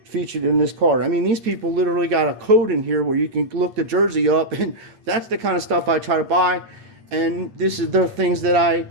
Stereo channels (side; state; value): left; late; 8.8 ms